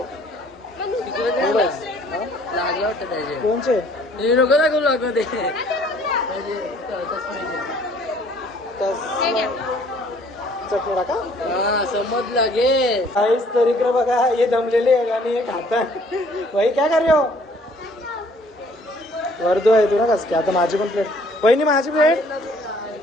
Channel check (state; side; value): normal; both; correlation 0.58